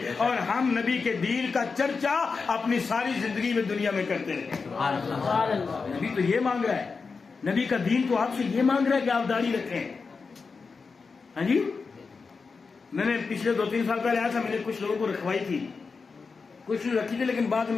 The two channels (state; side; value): quieter; right; 4.8 dB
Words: اور ہم نبی کے دین کا چرچا اپنی ساری زندگی میں دنیا میں کرتے رہے۔ نبی تو یہ مانگ رہا ہے، نبی کا دین تو آپ سے یہ مانگ رہا ہے کہ آپ داڑھی رکھیں۔ ہاں جی، میں نے پچھلے 2-3 سال پہلے آیا تھا، میں نے کچھ لوگوں کو رکھوائی تھی، کچھ رکھی تھی، لیکن بعد